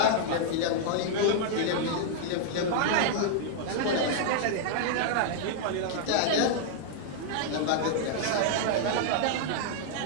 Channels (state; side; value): different; both; correlation -0.01